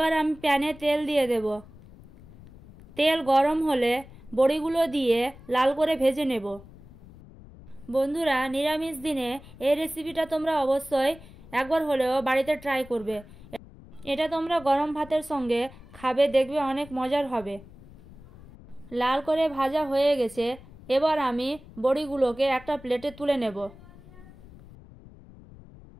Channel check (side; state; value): left; noise; rumble, 20 dB below the sound